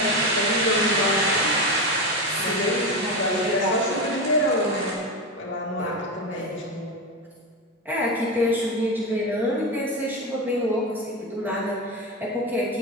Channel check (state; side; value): normal; both; correlation 0.17